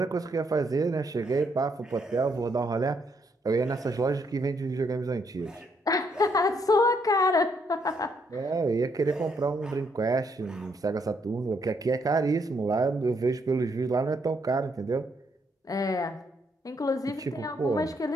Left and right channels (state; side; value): normal; both; correlation 0.73